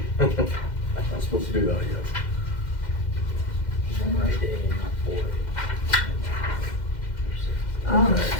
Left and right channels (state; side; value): late; right; 2.1 ms